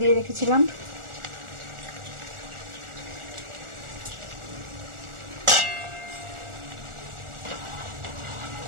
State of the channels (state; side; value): late; left; 1.4 ms